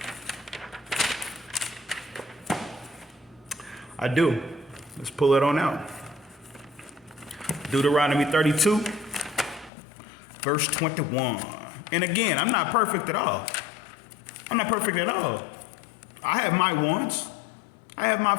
I do. Let's pull it on out. Deuteronomy 32, verse 21. And again, I'm not perfect at all. I'm not perfect at all. I have my wants. I have my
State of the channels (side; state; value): right; drops out; at 9.7 s